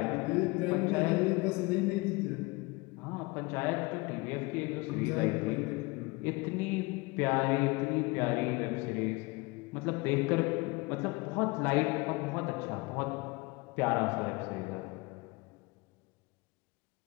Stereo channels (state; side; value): quieter; right; 24.8 dB